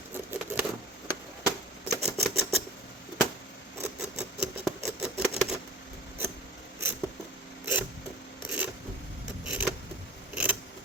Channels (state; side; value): normal; both; correlation 0.38